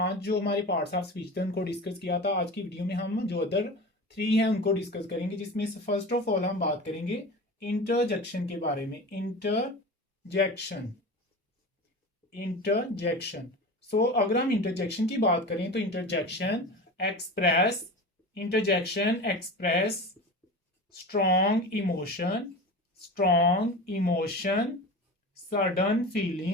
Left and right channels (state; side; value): normal; both; correlation 0.31